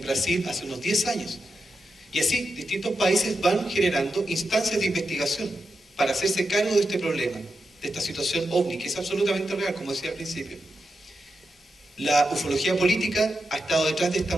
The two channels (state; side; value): normal; both; correlation 0.88